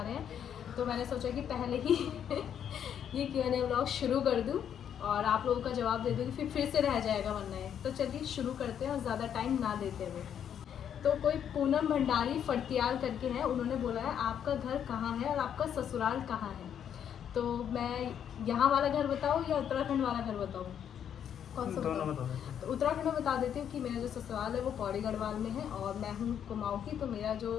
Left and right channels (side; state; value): right; quieter; 8.9 dB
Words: हैं। तो मैंने सोचा कि पहले ही ये Q&A व्लॉग शुरू कर दूँ और आप लोगों का जवाब दे दूँगी, फिर से रह जाएगा वरना है। तो चलिए शुरू करते हैं और ज़्यादा टाइम ना देते हुए। तो कोई पूनम भंडारी फड़तियाल करके है, उन्होंने बोला है आपका घर कहाँ है और आपका ससुराल कहाँ है। तो मैं यहाँ वाला घर बताऊँ या उत्तराखंड वाला घर बताऊँ, कौन सा बताऊँ? तो उत्तराखंड में बता देती हूँ कि मेरा जो ससुराल है वो पौड़ी गढ़वाल में है और मैं हूँ कुमाऊँ की। तो मेरा जो